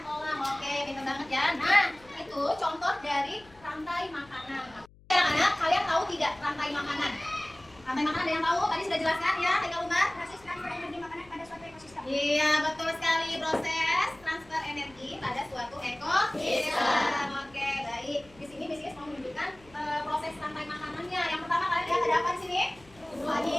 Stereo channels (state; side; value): noise; left; hum, 26 dB below the sound